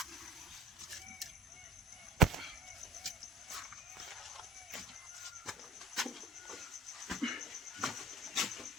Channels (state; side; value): normal; both; correlation 0.39